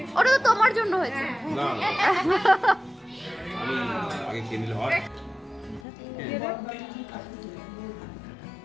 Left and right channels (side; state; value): right; drops out; at 5.9 s